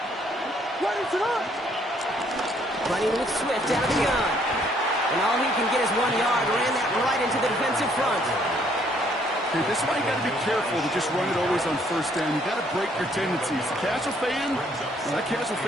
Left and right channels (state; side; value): normal; both; correlation 0.66